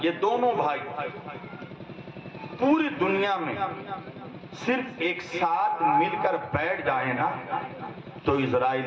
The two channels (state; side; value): identical; both; correlation 1.00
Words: یہ دونوں بھائی پوری دنیا میں صرف ایک ساتھ مل کر بیٹھ جائیں نا تو